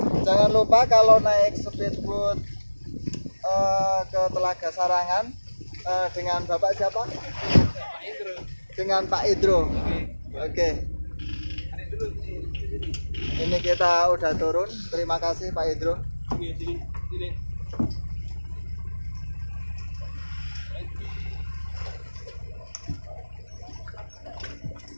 Jangan lupa kalau naik speedboat ke Telaga Sarangan dengan Bapak siapa? Pak Indro. Dengan Pak Indro. Oke. Ini kita udah turun. Terima kasih Pak Indro.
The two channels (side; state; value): both; inverted; correlation -1.00